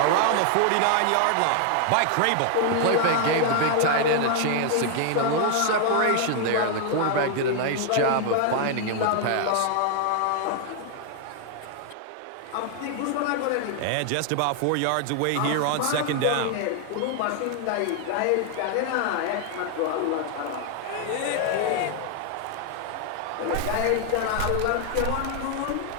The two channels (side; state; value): both; different; correlation 0.00